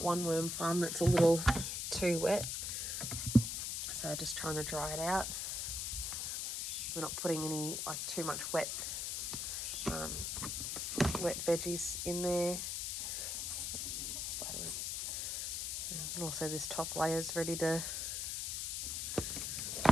one worm farm that's a little too wet, so just trying to dry it out. We're not putting any too much wet veggies in there. Spiderweb. And also this top layer is ready to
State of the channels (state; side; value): noise; left; hiss, 2 dB below the sound